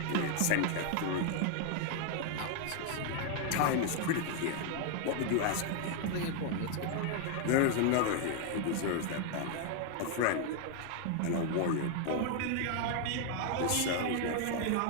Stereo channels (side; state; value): both; different; correlation 0.00